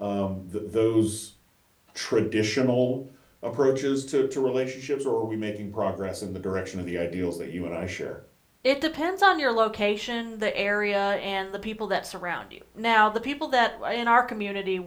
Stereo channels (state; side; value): identical; both; correlation 1.00